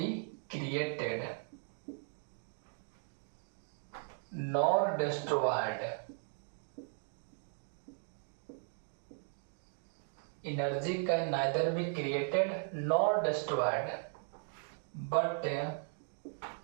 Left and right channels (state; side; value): silent; left; 53 dB below the other